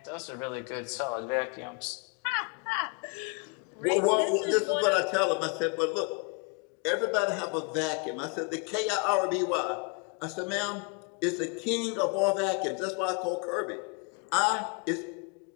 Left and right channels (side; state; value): right; quieter; 33.5 dB